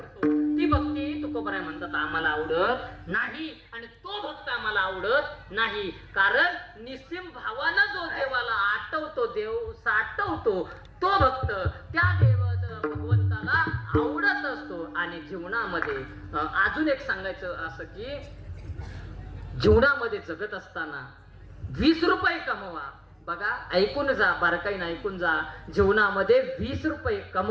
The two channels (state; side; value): identical; both; correlation 1.00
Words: ती भक्ती तुकोबराय म्हणतात आम्हाला आवडत नाही. आणि तो भक्त आम्हाला आवडत नाही, कारण निस्सिम भावानं जो देवाला आठवतो, देव साठवतो, तो भक्त त्या भगवंताला आवडत असतो. आणि जीवनामध्ये अजून एक सांगायचं असं की जीवनामध्ये जगत असताना 20 रुपये कमवा. बघा, ऐकून जा, बारकाईनं ऐकून जा. जीवनामध्ये 20 रुपये